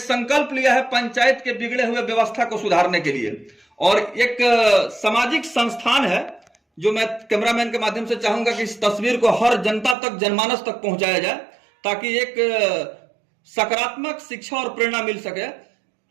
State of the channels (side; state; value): left; drops out; at 10.0 s